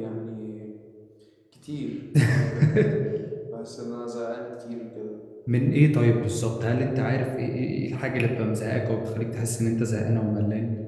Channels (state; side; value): identical; both; correlation 1.00